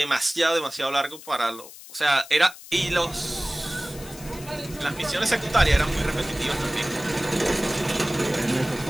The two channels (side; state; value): left; noise; hiss, 16 dB below the sound